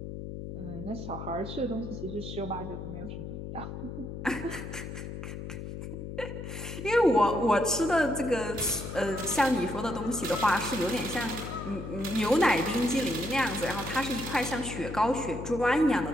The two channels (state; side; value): noise; left; hum, 8 dB below the sound